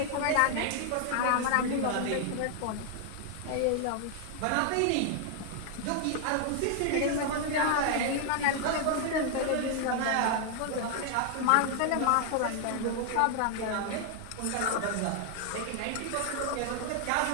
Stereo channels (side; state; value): both; different; correlation 0.00